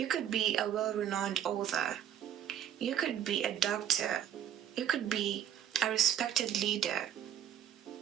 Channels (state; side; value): quieter; left; 10.0 dB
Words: could be a well-renowned author. You could be a doctor. You could be a respected leader.